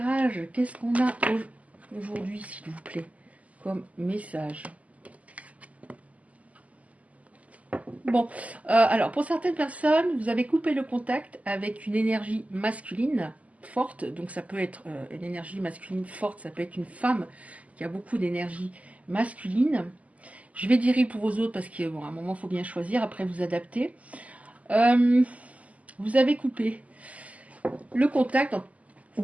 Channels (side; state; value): left; late; 0.071 ms